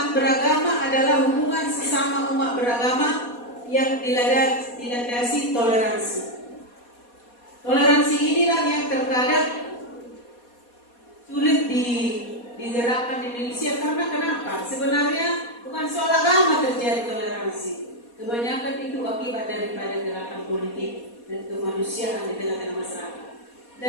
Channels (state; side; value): late; right; 4.2 ms